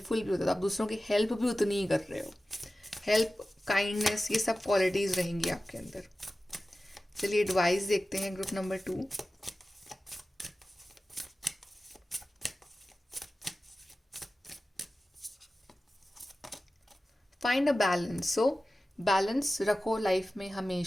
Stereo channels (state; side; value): normal; both; correlation 0.95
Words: भी होता है, आप दूसरों की हेल्प भी उतनी ही कर रहे हो। हेल्प, काइंडनेस, ये सब क्वालिटीज़ रहेंगी आपके अंदर। चलिए एडवाइस देखते हैं group number 2। Find a balance. So balance रखो लाइफ में